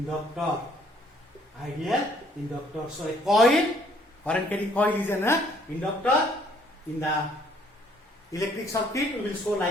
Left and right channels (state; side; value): normal; both; correlation 0.63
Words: Ideal inductor. So a coil, current carrying coil is an inductor. In the electric circuit, we will show